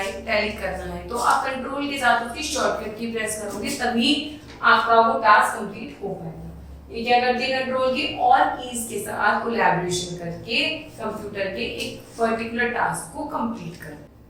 इटैलिक करना है, तो आप कंट्रोल के साथ उसकी शॉर्टकट की प्रेस करोगे, तभी आपका वो टास्क कंप्लीट हो पाएगा। ये क्या करती है कंट्रोल की, और कीज के साथ कोलैबोरेशन करके कंप्यूटर के एक पर्टिकुलर टास्क को कंप्लीट कर।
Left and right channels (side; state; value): both; identical; correlation 1.00